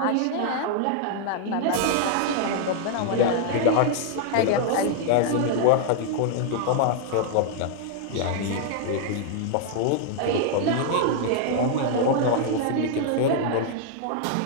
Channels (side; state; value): both; different; correlation -0.01